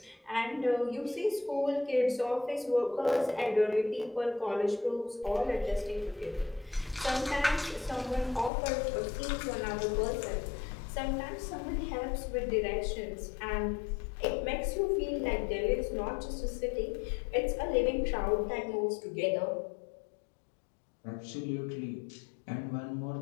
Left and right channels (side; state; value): right; drops out; at 8.5 s